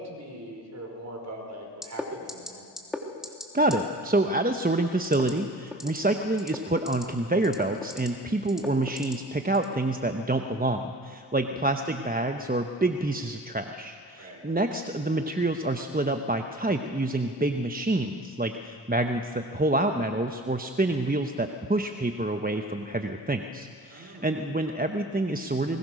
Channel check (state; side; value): normal; both; correlation 0.44